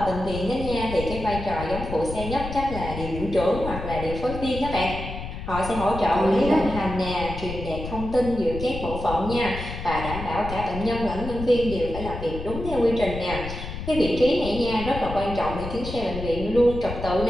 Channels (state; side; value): noise; left; rumble, 8 dB below the sound